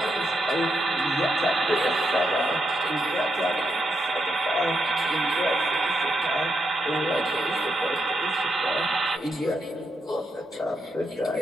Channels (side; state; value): both; normal; correlation 0.82